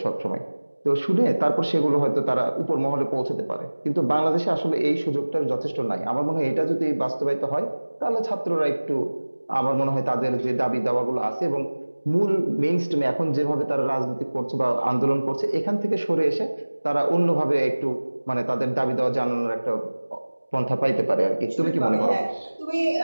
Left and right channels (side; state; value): both; inverted; correlation -1.00